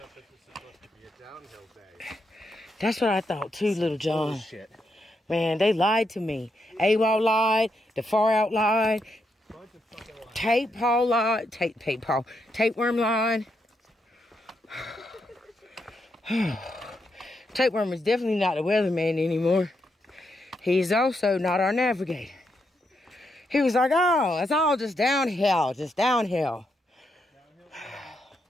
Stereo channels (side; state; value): both; normal; correlation 0.81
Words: this was supposed to be a downhill day. That's what I thought too, little John. Bullshit. Man, they lied to me. AWOL lied, the Far Out lied, Tapeworm lied. Tapeworm is definitely not the weatherman anymore. He's also not our navigator. He was like, oh, it's all just downhill, just downhill.